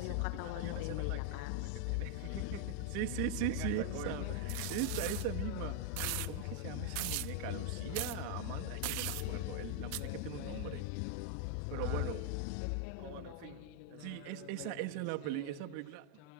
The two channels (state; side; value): different; both; correlation 0.01